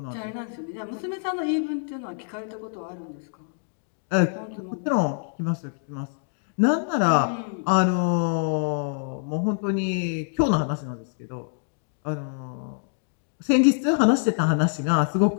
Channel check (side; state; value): right; silent; digital silence